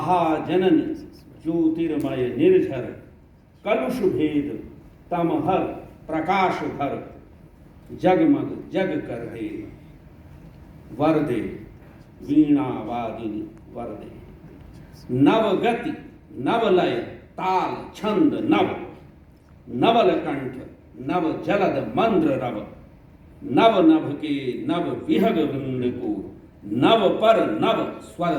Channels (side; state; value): both; identical; correlation 1.00